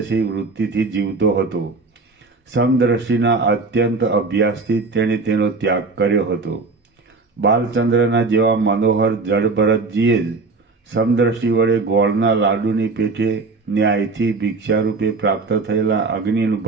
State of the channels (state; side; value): quieter; left; 3.8 dB